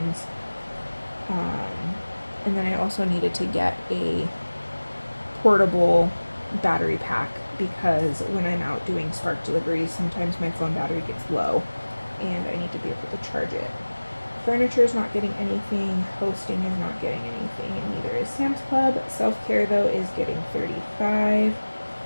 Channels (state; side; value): inverted; both; correlation -1.00